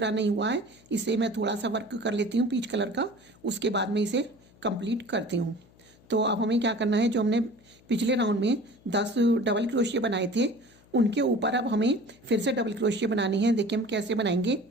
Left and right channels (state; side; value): noise; left; hum, 28 dB below the sound